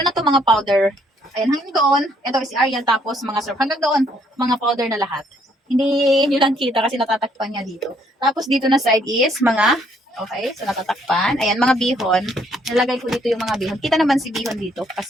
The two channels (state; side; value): normal; both; correlation 0.67